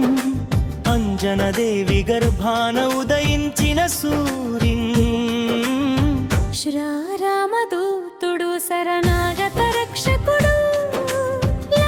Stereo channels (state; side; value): identical; both; correlation 1.00